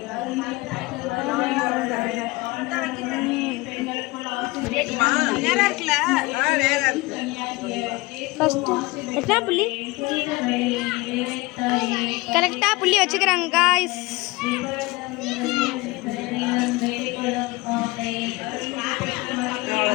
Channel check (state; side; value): quieter; right; 22.2 dB